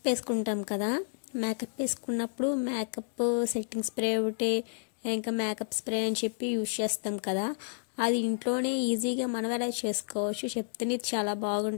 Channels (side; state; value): right; silent; digital silence